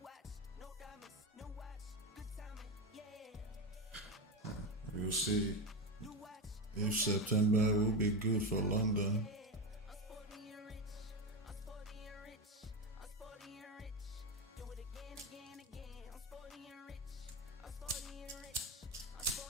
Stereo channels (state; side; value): normal; both; correlation 0.15